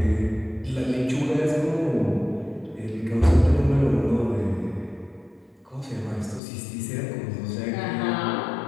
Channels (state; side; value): drops out; right; at 6.4 s